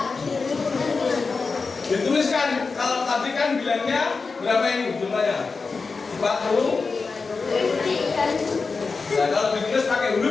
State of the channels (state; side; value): quieter; right; 4.5 dB